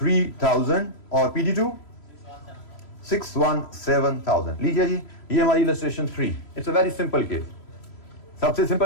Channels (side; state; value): right; late; 3.0 ms